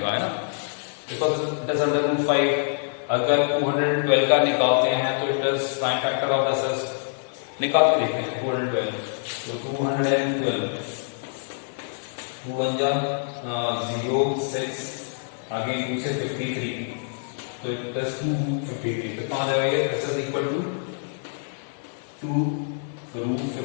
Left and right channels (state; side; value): silent; right; 61 dB below the other